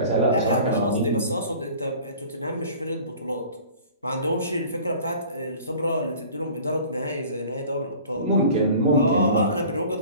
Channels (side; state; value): both; inverted; correlation -0.44